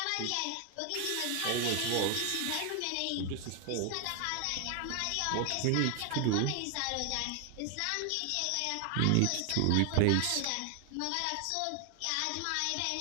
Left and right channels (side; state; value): both; different; correlation 0.00